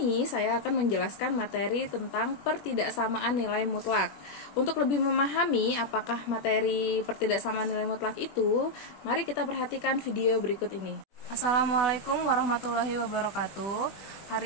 saya akan menjelaskan materi tentang pertidaksamaan nilai mutlak. Untuk lebih memahami apakah materi pertidaksamaan nilai mutlak itu, mari kita perhatikan video berikut ini. Assalamualaikum warahmatullahi wabarakatuh.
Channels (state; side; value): late; right; 21 ms